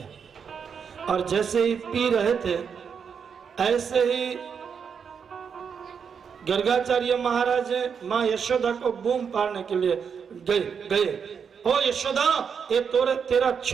और जैसे ही पी रहे थे ऐसे ही गर्गाचार्य महाराज माँ यशोदा को बूम पाड़ने के लिए गए। ओ यशोदा, ये तेरा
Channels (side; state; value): left; quieter; 6.7 dB